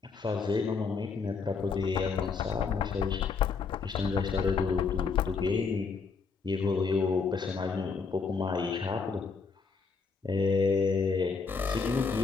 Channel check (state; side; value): quieter; right; 5.0 dB